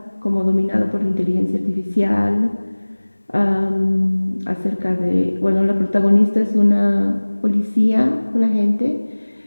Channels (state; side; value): inverted; both; correlation -1.00